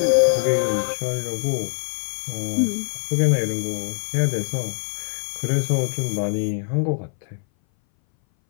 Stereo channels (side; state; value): right; silent; 60 dB below the other